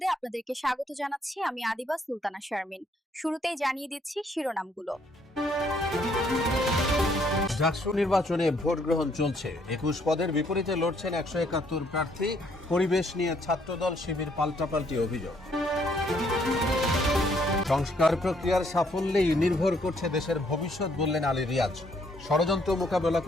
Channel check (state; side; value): normal; both; correlation 0.68